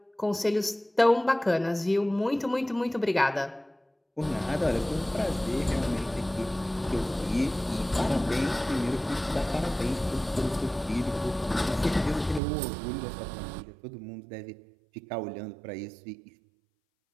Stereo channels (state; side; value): drops out; left; at 12.4 s